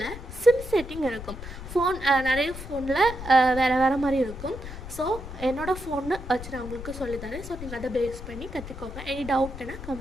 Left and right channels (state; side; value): noise; left; rumble, 11 dB below the sound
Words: சிம் செட்டிங் இருக்கும். ஃபோன் நிறைய ஃபோனில் வேறு மாதிரி இருக்கும். ஸோ என்னோடய ஃபோன்னு வச்சு நான் உங்களுக்கு சொல்லித்தரேன். ஸோ நீங்கள் அதை பேஸ் பண்ணி கற்றுக்கோங்க. எனி டவுட்னா